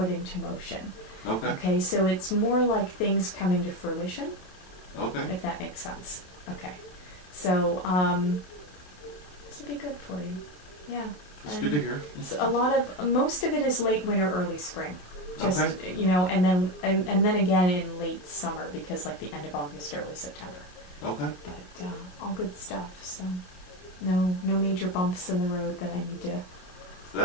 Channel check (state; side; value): late; right; 28 ms